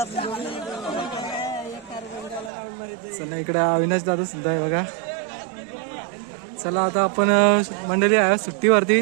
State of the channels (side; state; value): left; drops out; at 2.5 s